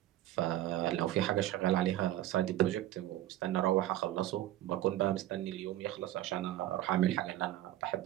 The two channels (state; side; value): quieter; left; 14.1 dB